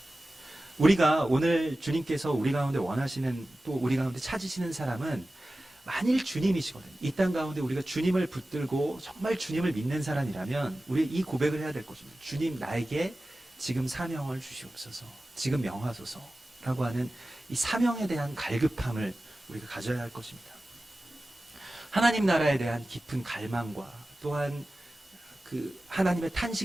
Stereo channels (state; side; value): normal; both; correlation 0.95